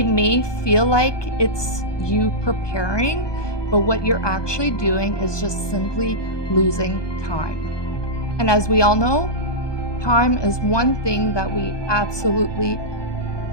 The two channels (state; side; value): late; right; 1.2 ms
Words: may feel like it's you preparing, but what you're actually doing is just simply losing time. And as we all know, time is one thing that we absolutely